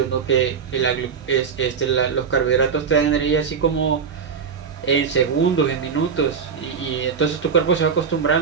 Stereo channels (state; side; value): quieter; left; 6.3 dB